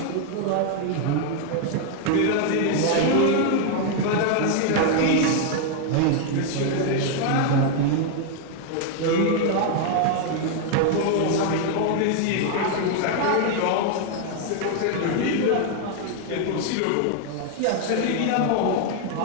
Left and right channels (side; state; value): both; different; correlation 0.00